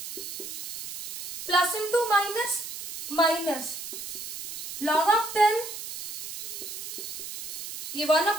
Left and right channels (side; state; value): right; noise; hiss, 7 dB below the sound